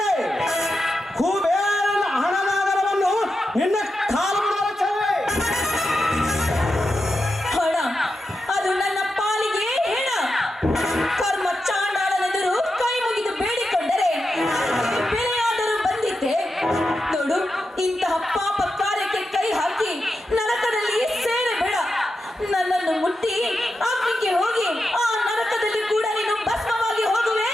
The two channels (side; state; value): both; normal; correlation 0.89